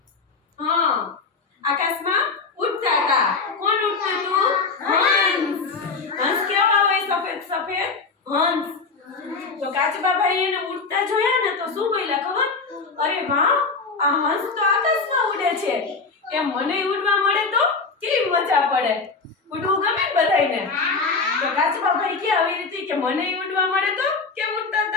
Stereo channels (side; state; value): right; quieter; 4.4 dB